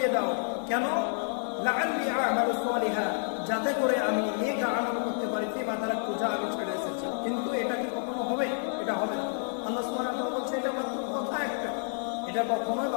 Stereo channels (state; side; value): silent; right; digital silence